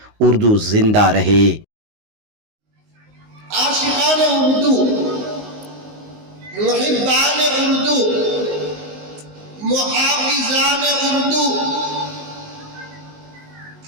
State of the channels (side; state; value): left; late; 19 ms